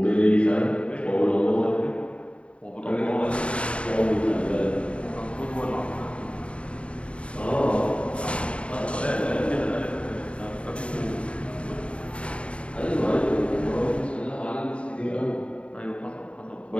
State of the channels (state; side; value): late; right; 0.060 ms